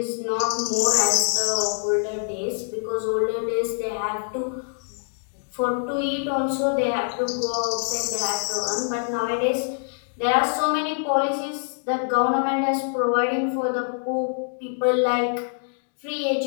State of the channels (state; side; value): silent; right; 62 dB below the other